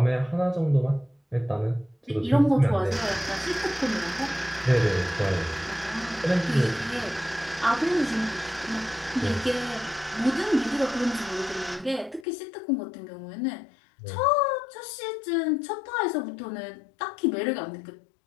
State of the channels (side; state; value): right; drops out; at 12.2 s